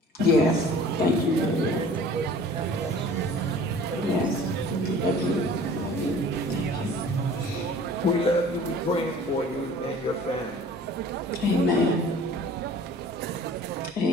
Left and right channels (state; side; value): normal; both; correlation 0.47